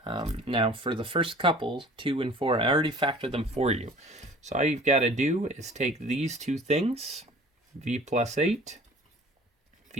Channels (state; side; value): normal; both; correlation 0.47